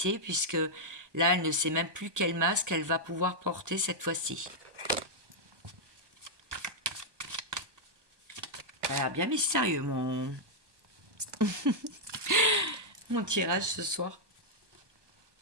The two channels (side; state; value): left; late; 1.2 ms